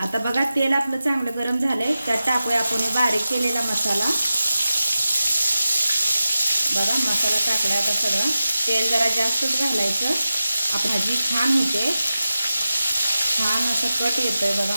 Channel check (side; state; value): both; inverted; correlation -0.93